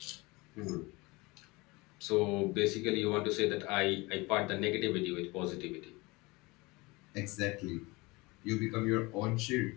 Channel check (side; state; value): right; quieter; 23.9 dB